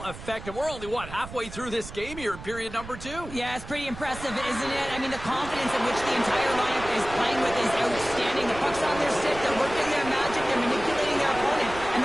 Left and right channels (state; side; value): noise; right; rumble, 13 dB below the sound